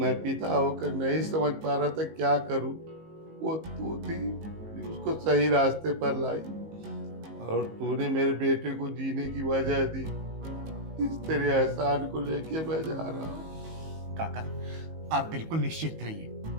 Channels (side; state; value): left; late; 19 ms